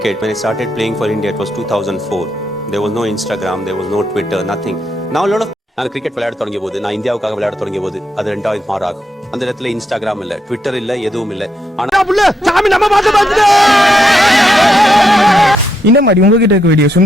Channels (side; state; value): both; normal; correlation 0.79